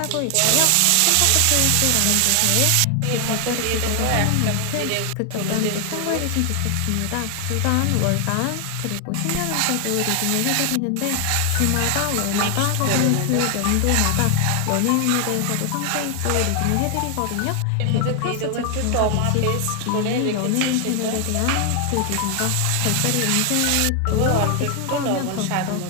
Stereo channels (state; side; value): different; both; correlation 0.00